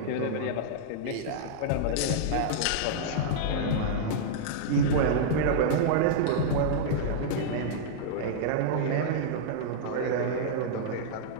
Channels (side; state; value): both; different; correlation -0.03